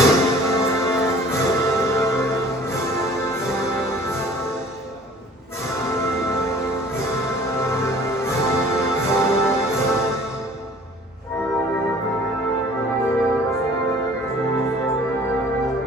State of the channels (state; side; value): normal; both; correlation 0.50